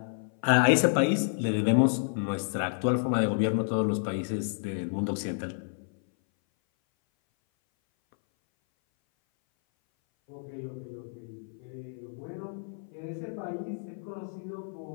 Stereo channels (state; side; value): silent; right; 58 dB below the other